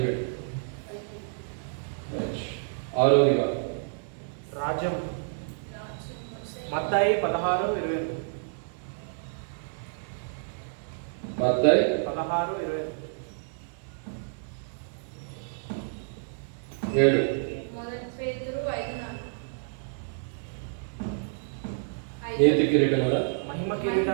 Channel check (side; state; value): left; silent; 58 dB below the other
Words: 6వదిగా రాజ్యం. మత్తయి 16:22. మత్తయి 16:22. 7. నీతి కిరీటం కదా. మహిమ